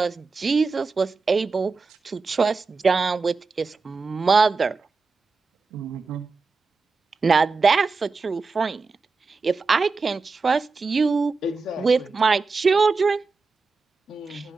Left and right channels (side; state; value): left; quieter; 4.3 dB